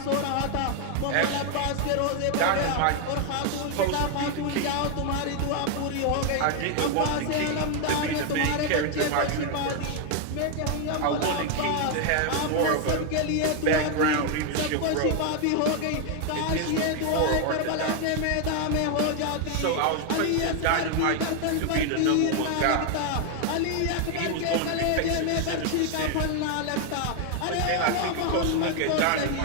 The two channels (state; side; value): different; both; correlation 0.01